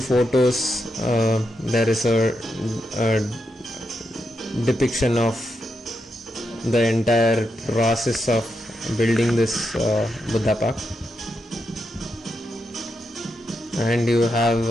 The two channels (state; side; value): normal; both; correlation 0.84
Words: photos there is a depiction of the entire process of building this Budha Park. And you have